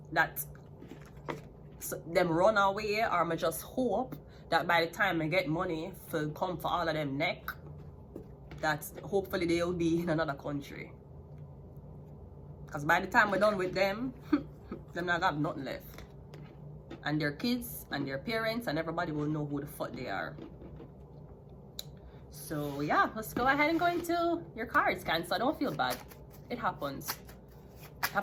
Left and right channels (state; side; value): identical; both; correlation 1.00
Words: that them run away, or I just hope that by the time I get money for come for all of them neck, that hopefully they'll be in another country. Because by the time we're done with them, them not have nothing left. And their kids and their parents and everybody will know who the fuck they are. So yeah, let's go ahead and go into your cards, Cancer. Don't feel bad. It happens.